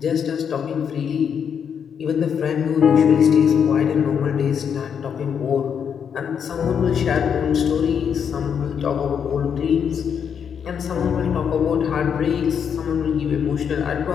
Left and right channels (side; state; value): right; quieter; 7.5 dB